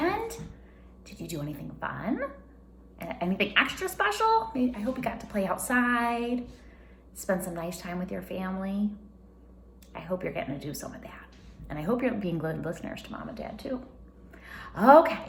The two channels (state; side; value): identical; both; correlation 1.00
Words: Did you do anything fun? Anything extra special? I hope you got to play outside, spend some nice time with your family. I hope you're getting to do some of that. And I hope you're being good listeners to Mom and Dad too.